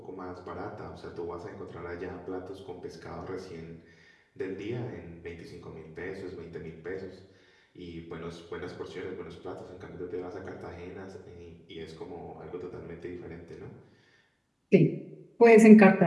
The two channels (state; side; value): identical; both; correlation 1.00